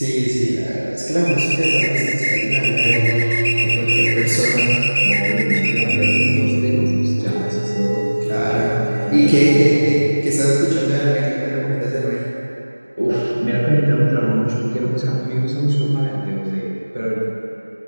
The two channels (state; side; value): inverted; both; correlation -1.00